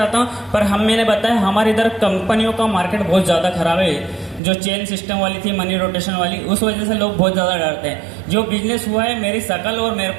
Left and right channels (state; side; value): drops out; left; at 4.4 s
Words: हूँ, पर मैंने बताया हमारे इधर कंपनियों का मार्केट बहुत ज्यादा खराब है। जो चेन सिस्टम वाली थी, मनी रोटेशन वाली, उस वजह से लोग बहुत ज्यादा डरते हैं। जो बिजनेस हुआ है मेरी शकल और मेरे